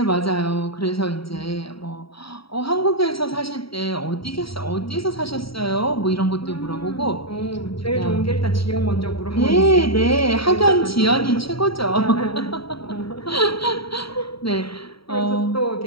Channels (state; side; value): late; right; 0.75 ms